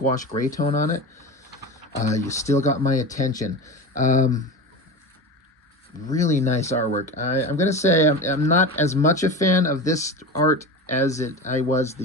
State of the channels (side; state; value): both; normal; correlation 0.27